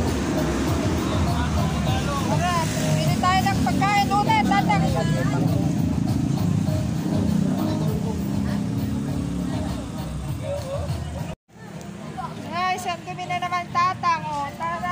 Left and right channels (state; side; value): identical; both; correlation 1.00